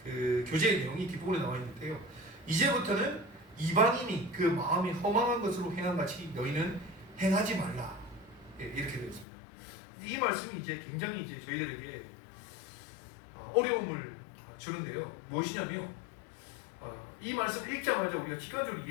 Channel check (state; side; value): drops out; right; at 9.2 s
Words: 교제의 내용이 뒷부분에 나와 있는데요. 이제부터는 이방인이 그 마음이 허망한 것으로 행한같이 너희는 행하지 말라. 이렇게 되어 있습니다. 이 말씀이 이제 굉장히 이제 저희들에게 어려움을 주는데요. 무엇이냐면, 이 말씀을 읽자마자 우리가 직관적으로